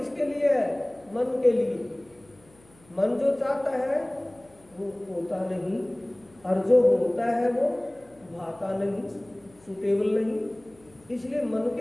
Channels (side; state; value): left; noise; hum, 28 dB below the sound